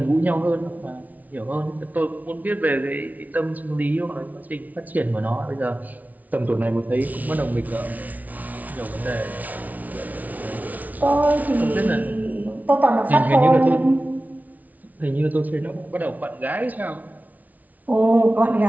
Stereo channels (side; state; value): left; late; 0.074 ms